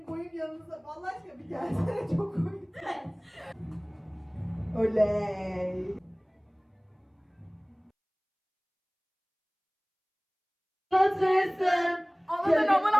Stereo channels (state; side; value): identical; both; correlation 1.00